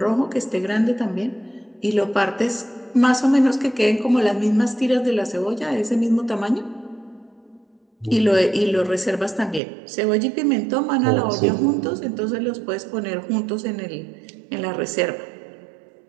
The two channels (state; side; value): drops out; left; at 9.6 s